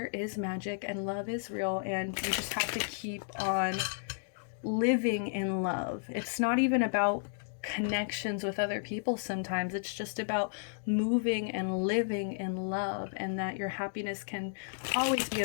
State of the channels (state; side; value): silent; right; digital silence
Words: is magic and love is real, and you just have to keep on living in love. It's not even about connections with other people sometimes. It's just about moving and living in love, and that your happiness can always be